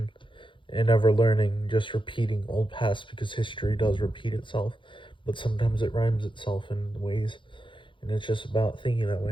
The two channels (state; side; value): late; right; 0.24 ms